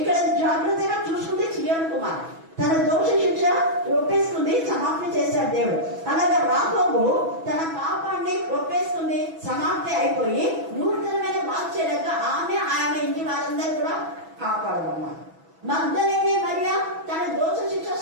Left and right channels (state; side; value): late; left; 6.1 ms